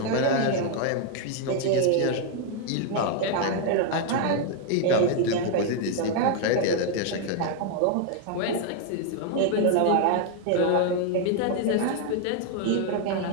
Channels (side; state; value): both; different; correlation 0.00